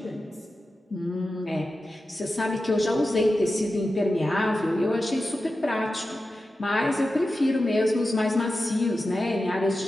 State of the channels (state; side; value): normal; both; correlation 0.92